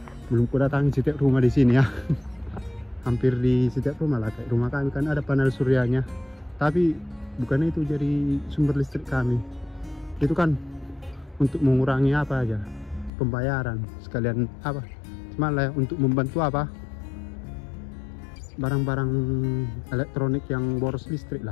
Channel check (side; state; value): right; drops out; at 13.1 s